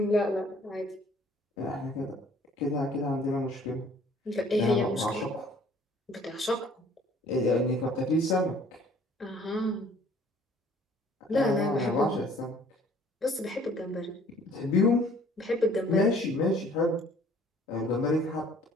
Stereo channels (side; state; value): both; normal; correlation 0.56